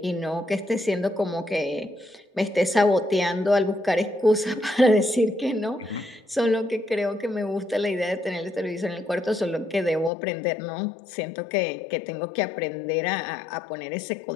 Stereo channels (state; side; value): drops out; right; at 10.1 s